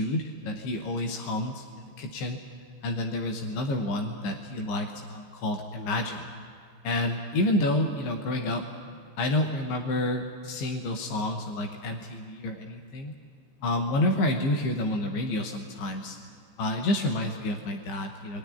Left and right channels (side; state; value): right; late; 15 ms